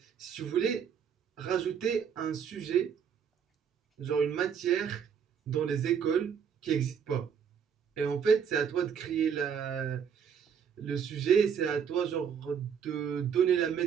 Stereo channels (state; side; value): quieter; left; 7.4 dB